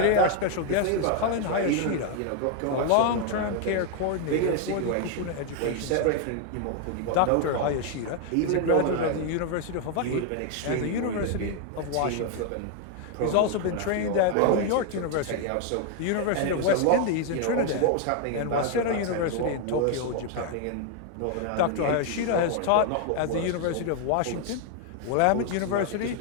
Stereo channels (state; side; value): different; both; correlation 0.00